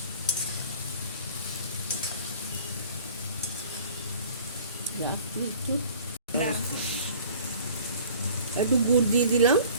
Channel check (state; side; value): inverted; both; correlation -0.49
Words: একটু গুড় দিয়ে দিলাম,